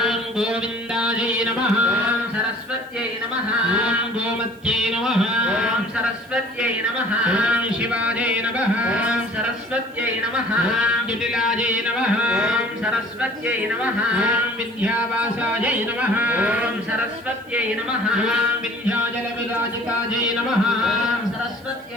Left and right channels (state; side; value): noise; right; hiss, 30 dB below the sound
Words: गोविन्दायै नमः ओम सरस्वत्यै नमः ओम गोमत्यै नमः ओम सरस्वत्यै नमः ओम शिवायै नमः ओम सरस्वत्यै नमः ओम जटिलायै नमः ओम सरस्वत्यै नमः ओम विद्यावासायै नमः ओम सरस्वत्यै नमः ओम विन्ध्याचलविराजितायै नमः ओम